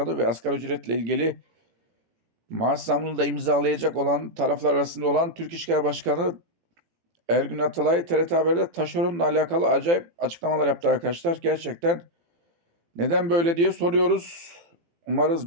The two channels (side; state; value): left; late; 18 ms